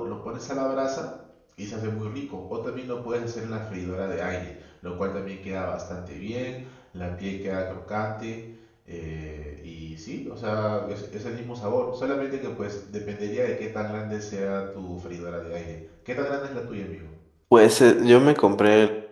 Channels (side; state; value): both; identical; correlation 1.00